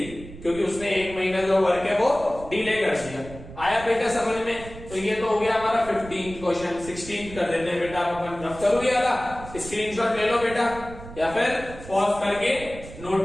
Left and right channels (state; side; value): noise; right; rumble, 15 dB below the sound